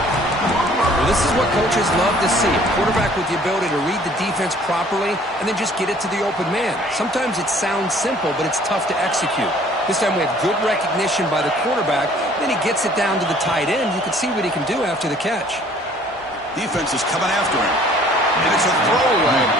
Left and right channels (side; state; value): both; normal; correlation 0.55